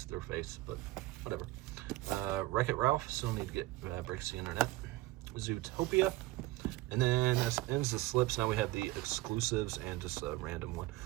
their face, but whatever. Wreck-It Ralph, still need to get breaks the internet. Zootopia, and then that ends the slips. Now we have the exclusives and just a random one.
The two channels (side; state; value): left; quieter; 18.5 dB